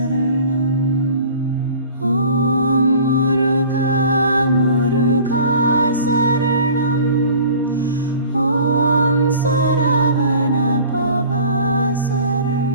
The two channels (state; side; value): inverted; both; correlation -0.45